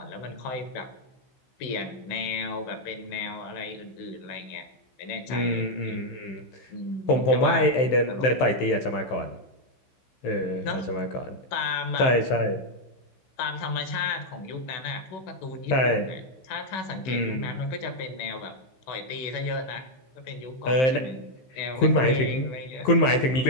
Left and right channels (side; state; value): right; late; 15 ms